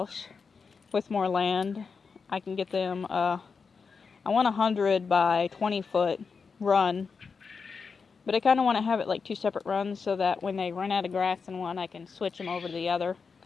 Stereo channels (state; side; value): quieter; right; 5.3 dB